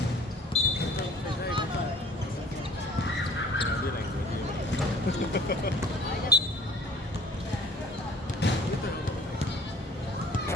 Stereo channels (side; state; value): both; normal; correlation 0.51